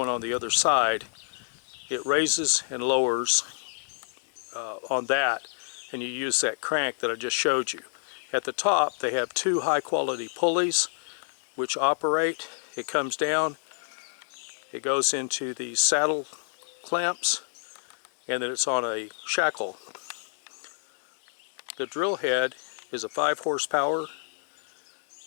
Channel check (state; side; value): silent; right; digital silence